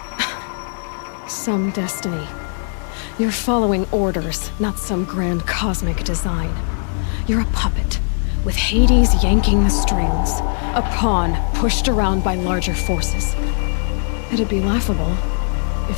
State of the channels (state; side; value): silent; right; digital silence